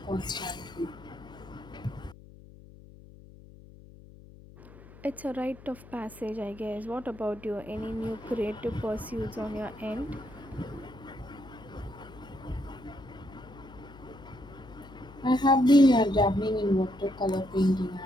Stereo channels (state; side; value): noise; left; hum, 19 dB below the sound